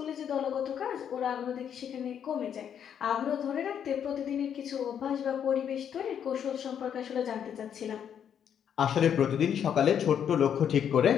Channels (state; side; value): quieter; right; 8.6 dB